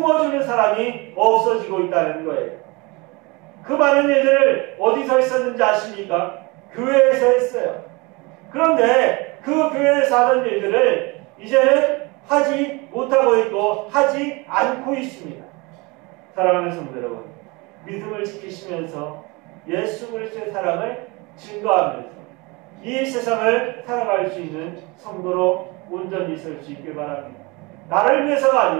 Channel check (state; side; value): quieter; left; 26.2 dB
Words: 사람이 없어지고 있다는 거예요. 그 많은 일들을 어디서 했었는지 아십니까? 교회에서 했어요. 그런데 그 교회에서 하던 일들을 이제는 하지 못하고 있고 하지 않고 있습니다. 사랑하는 성도 여러분, 믿음을 지키시면서 예수 그리스도의 사랑을 증거하면서 이 세상을 살아갈 수 있는 성도로 온전히 설 수 있길 바랍니다. 나를 위해서가